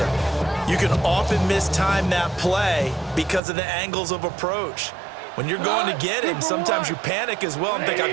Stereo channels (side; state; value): left; drops out; at 3.4 s